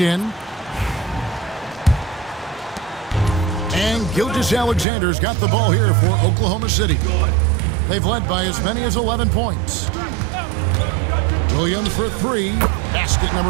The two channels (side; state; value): left; drops out; at 4.9 s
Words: And Gilgeous-Alexander's got the ball here for Oklahoma City. They've led by as many as 11 points. Williams for 3. Basket